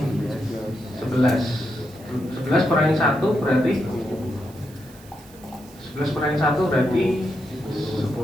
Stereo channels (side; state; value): right; noise; hiss, 24 dB below the sound